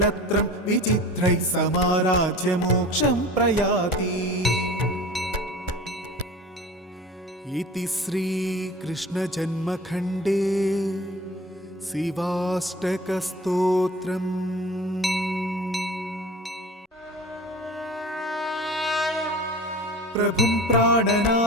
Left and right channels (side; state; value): both; normal; correlation 0.39